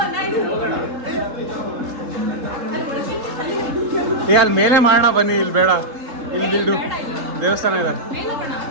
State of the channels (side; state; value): left; late; 3.7 ms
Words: ಅಲ್ಲಿ ಮೇಲೆ ಮಾಡೋಣ ಬನ್ನಿ. ಇಲ್ಲಿ ಬೇಡ, ಇಲ್ಲಿ ದೇವಸ್ಥಾನ ಇದೆ.